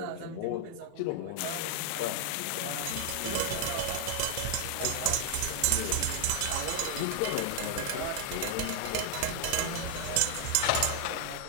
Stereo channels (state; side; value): different; both; correlation 0.00